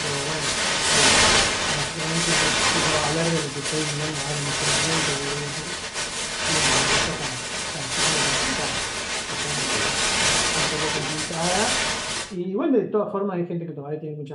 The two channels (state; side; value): identical; both; correlation 1.00